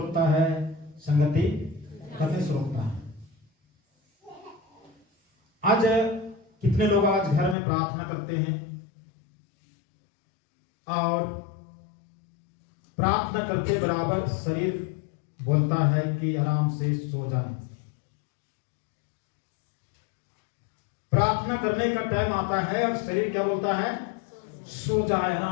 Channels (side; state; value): right; drops out; at 7.6 s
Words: है, संगति करने से रोकता है। आज कितने लोग आज घर में प्रार्थना करते हैं और प्रार्थना करते बराबर शरीर बोलता है कि आराम से सो जाए। प्रार्थना करने का टाइम आता है और शरीर क्या बोलता है, सो जाए,